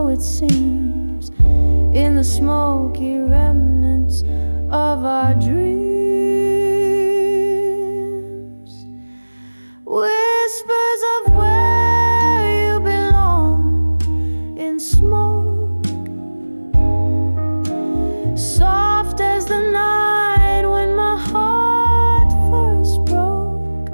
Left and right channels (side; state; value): both; inverted; correlation -1.00